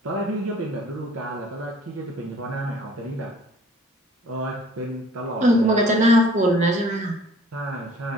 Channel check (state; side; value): normal; both; correlation 0.53